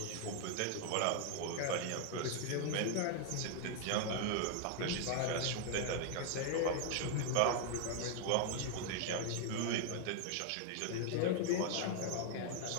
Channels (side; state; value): both; different; correlation 0.00